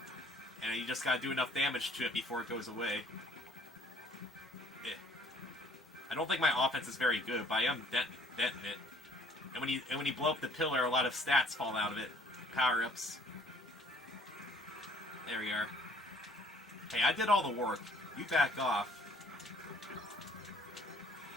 And you just gotta do enough damage to it before it goes away. I don't think my offense is very good, but I am denting it. And when you blow up the pillar, a lot of stats fall out of it. Power-ups. There we are. Hey, I did all the work. You back off.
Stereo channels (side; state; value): both; normal; correlation 0.59